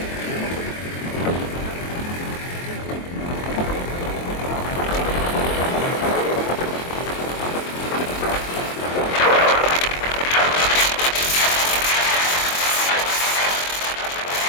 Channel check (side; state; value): right; late; 23 ms